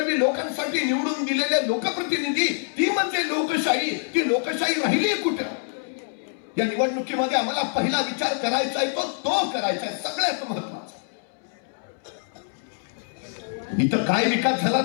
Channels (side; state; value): right; silent; 62 dB below the other